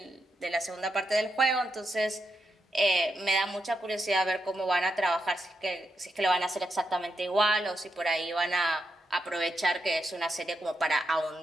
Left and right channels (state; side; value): normal; both; correlation 0.84